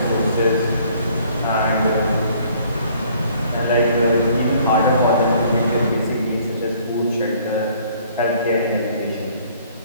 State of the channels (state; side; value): inverted; both; correlation -0.59